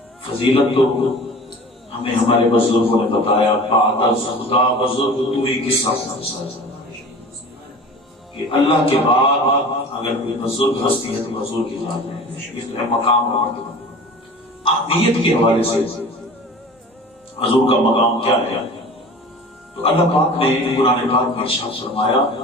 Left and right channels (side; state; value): both; normal; correlation 0.40